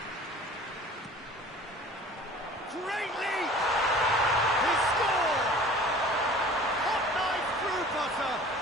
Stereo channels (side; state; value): both; normal; correlation 0.45